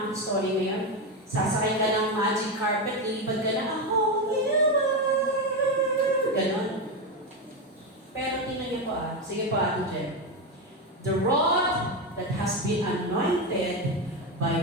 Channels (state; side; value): normal; both; correlation 0.12